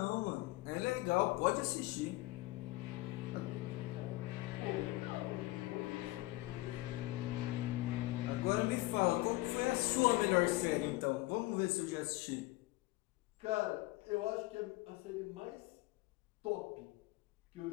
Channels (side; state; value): right; quieter; 19.4 dB